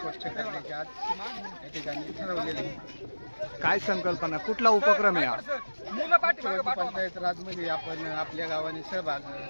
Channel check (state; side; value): inverted; both; correlation -1.00